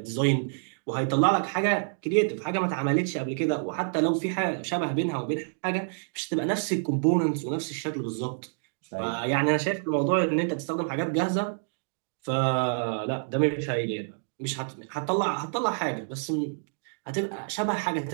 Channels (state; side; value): silent; left; digital silence